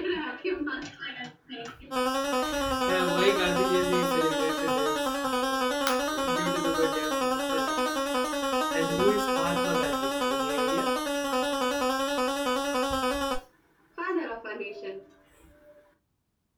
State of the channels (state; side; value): identical; both; correlation 1.00